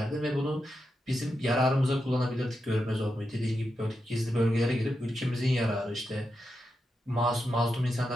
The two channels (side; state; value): both; normal; correlation 0.87